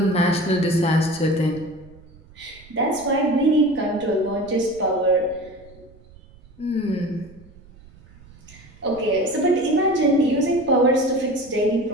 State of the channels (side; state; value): right; noise; rumble, 24 dB below the sound